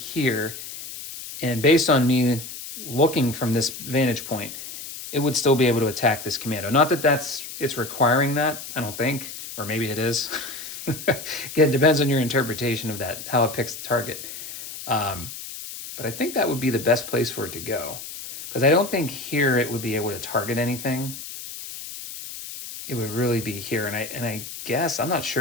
and based on me looking from this vantage point, it would still be able to attack this commando. Not that it's requiring that, I don't think, or maybe it is. Again, it depends on your interpretation of that, how it picks the target. But I think that would be the best place for it to go, because I don't think here it would be able to target anything. It would really be here, and I guess I'm not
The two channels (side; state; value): left; noise; hiss, 10 dB below the sound